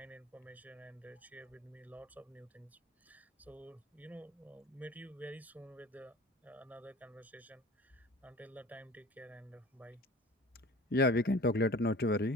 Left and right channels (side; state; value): both; normal; correlation 0.43